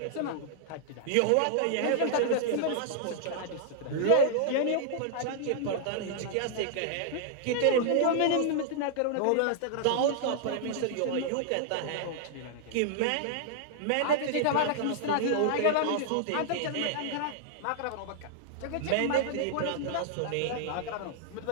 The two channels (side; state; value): both; different; correlation -0.01